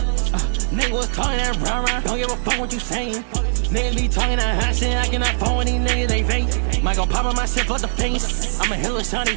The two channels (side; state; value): left; silent; 66 dB below the other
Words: Nigga was talking that rah-rah, don't give a fuck what you saying. Niggas be talking that hot shit, I cannot phone with these niggas, they fake. Might go pop on my shit for the face. I'm a hella shawty